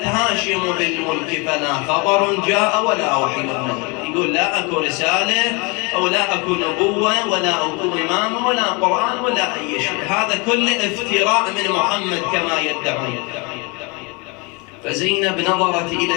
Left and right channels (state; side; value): quieter; right; 29.5 dB